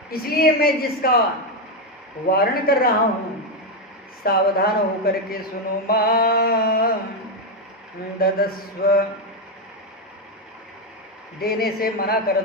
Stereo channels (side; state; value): both; normal; correlation 0.07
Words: इसलिए मैं जिसका वारण कर रहा हूं, सावधान होकर के सुनो। मां ददस्व, देने से मना कर